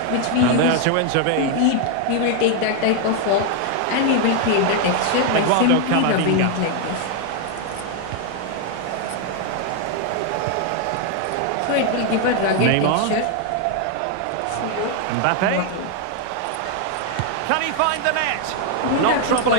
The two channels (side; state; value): both; different; correlation 0.01